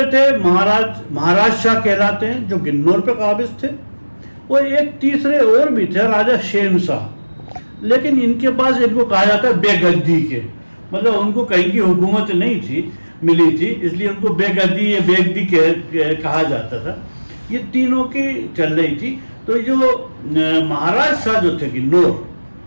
थे महाराज शाह कहलाते हैं, जो गिन्नौर पे काबिज थे। और एक तीसरे और भी थे, राजा शेम शाह, लेकिन इनके पास, इनको कहा जाता है बेगद्दी के, मतलब उनको कहीं की हुकूमत नहीं थी, मिली थी, इसलिए उनको बेगद्दी या बेगद्दी कहा जाता था। ये तीनों की चल रही थी। तो जो महाराज शाह जो थे गिन्नौर,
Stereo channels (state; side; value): inverted; both; correlation -1.00